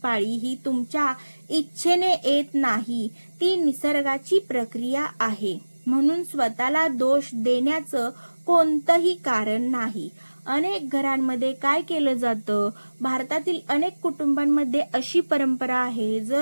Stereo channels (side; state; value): both; inverted; correlation -1.00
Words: पाळी ही तुमच्या इच्छेने येत नाही, ती निसर्गाची प्रक्रिया आहे. म्हणून स्वतःला दोष देण्याचं कोणतंही कारण नाही. अनेक घरांमध्ये काय केलं जातं, भारतातील अनेक कुटुंबांमध्ये अशी परंपरा आहे,